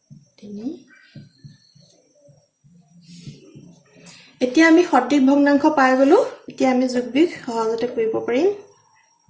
এতিয়া আমি সঠিক ভগ্নাংশ পাই গলো এতিয়া আমি যোগবিয়োগ সহজতে কৰিব পাৰিম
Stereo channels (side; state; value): both; identical; correlation 1.00